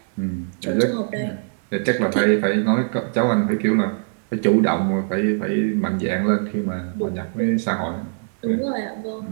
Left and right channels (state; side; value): silent; left; digital silence